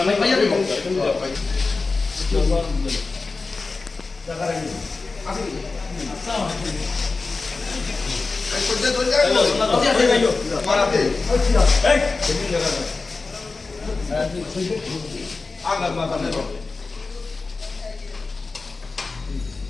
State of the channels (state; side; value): quieter; right; 3.9 dB